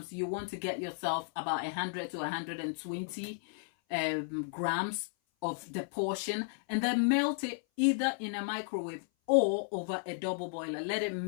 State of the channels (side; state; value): right; silent; 55 dB below the other